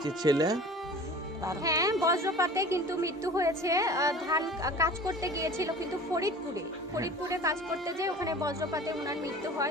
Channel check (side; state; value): both; normal; correlation 0.41